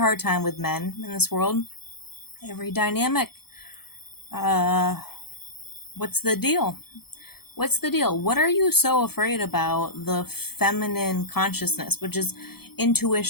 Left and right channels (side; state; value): right; late; 0.96 ms